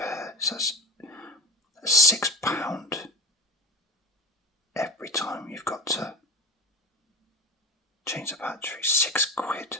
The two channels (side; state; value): both; normal; correlation 0.32